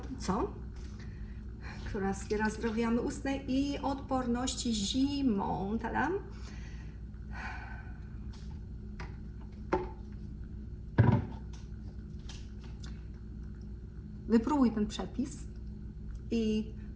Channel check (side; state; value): both; identical; correlation 1.00